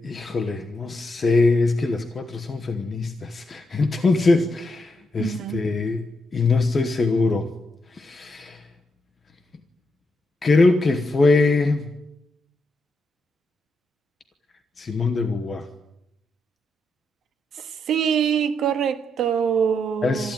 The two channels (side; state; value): both; normal; correlation 0.82